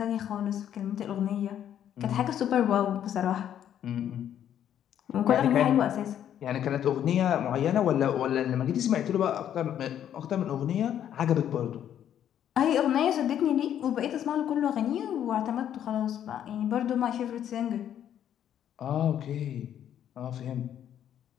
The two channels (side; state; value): right; quieter; 10.2 dB